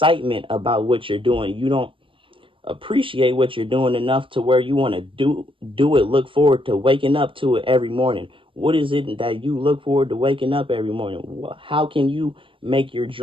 about what you're doing. You don't appreciate what you're doing enough to where you want to do it, look forward to waking up to it every morning. What is it that you look forward to waking up every morning? How can you make your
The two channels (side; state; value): left; late; 0.25 ms